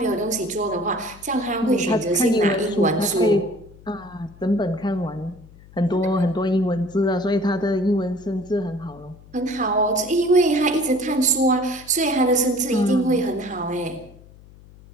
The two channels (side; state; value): left; noise; hum, 23 dB below the sound